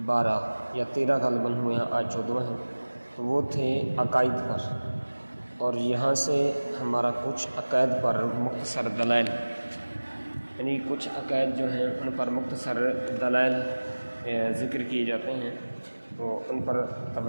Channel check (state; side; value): inverted; both; correlation -1.00